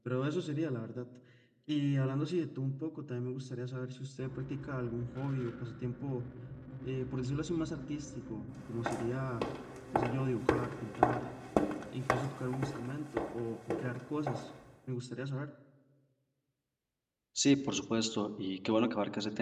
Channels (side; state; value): both; identical; correlation 1.00